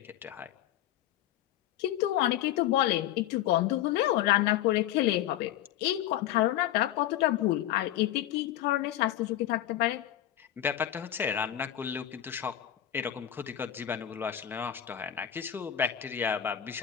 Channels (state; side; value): quieter; right; 12.0 dB